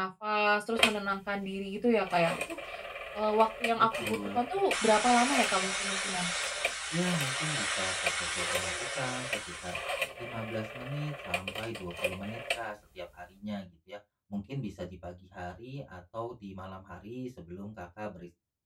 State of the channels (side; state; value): both; identical; correlation 1.00